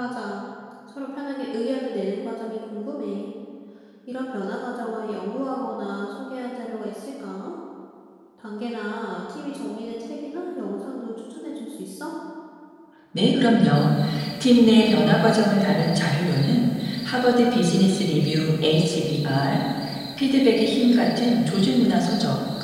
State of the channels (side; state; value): both; identical; correlation 1.00